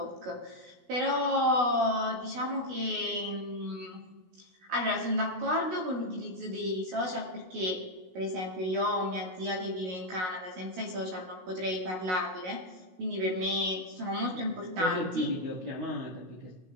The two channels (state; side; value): late; left; 16 ms